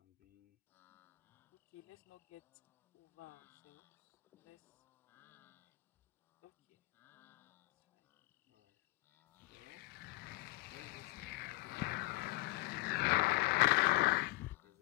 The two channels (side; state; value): right; quieter; 21.0 dB